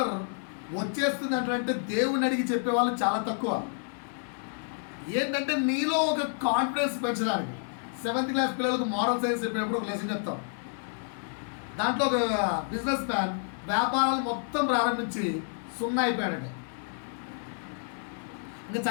వచ్చేస్తుంది అంటే దేవుని అడిగి చెప్పేవాళ్ళు చాలా తక్కువ. ఏంటంటే నీలో ఒక కాన్ఫిడెన్స్ పెంచడానికి. 7th క్లాస్ పిల్లలకు మోరల్ సైన్స్ చెప్పినప్పుడు ఒక లెసన్ చెప్తాం. దాంట్లో ఒక బిజినెస్ మ్యాన్ వ్యాపారాలు మొత్తం ప్రారంభించి 0 అయిపోయాడండి. ఇంకా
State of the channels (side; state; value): right; silent; 58 dB below the other